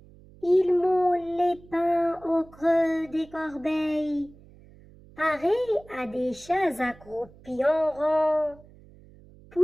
Il moule les pains au creux des corbeilles, pareil à des chats accroupis en rang.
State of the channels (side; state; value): right; noise; hum, 24 dB below the sound